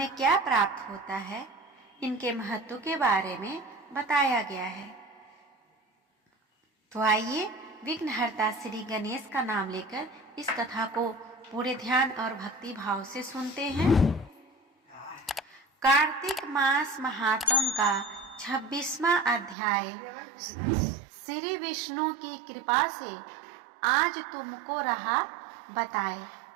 क्या प्राप्त होता है, इनके महत्व के बारे में बताया गया है। तो आइए विघ्नहर्ता श्री गणेश का नाम लेकर इस कथा को पूरे ध्यान और भक्ति भाव से सुनते हैं। कार्तिक मास महात्म का 26वां अध्याय। श्री विष्णु की कृपा से आज तुमको रहा बताए।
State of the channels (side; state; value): left; drops out; at 19.6 s